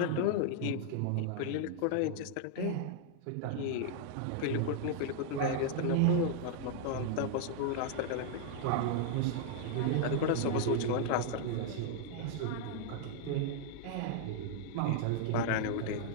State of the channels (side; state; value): both; different; correlation 0.00